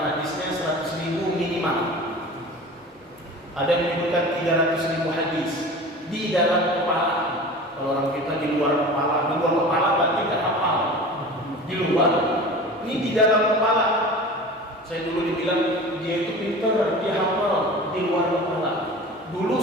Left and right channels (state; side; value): normal; both; correlation 0.37